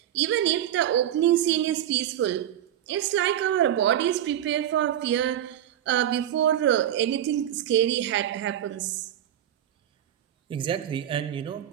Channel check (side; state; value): left; quieter; 11.2 dB